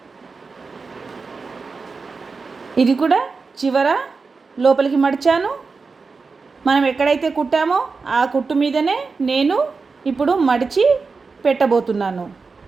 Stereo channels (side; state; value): left; quieter; 4.5 dB